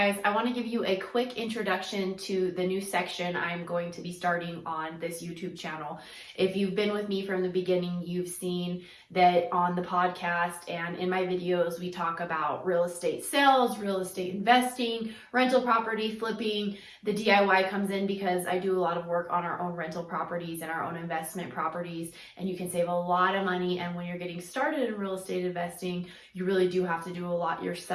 I want to give you a quick introduction to the new section I'm going to be starting on this YouTube channel. If you've been with me from the beginning, you've seen that on the podcast and in my videos, we talk about real estate sales, real estate investing, rental property flipping. The DIY comes in because I do a lot of work on our own rental properties and our own investment properties, and you can save a lot of money. And when you're getting started in real estate investing, you really do have to do a lot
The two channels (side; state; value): both; identical; correlation 1.00